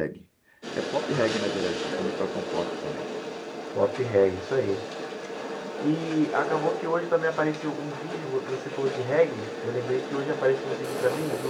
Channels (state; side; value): identical; both; correlation 1.00